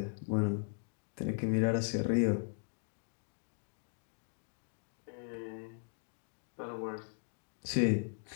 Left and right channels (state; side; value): silent; right; 52 dB below the other